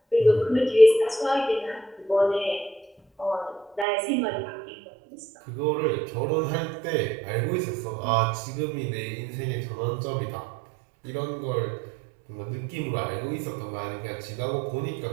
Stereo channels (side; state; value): left; drops out; at 3.9 s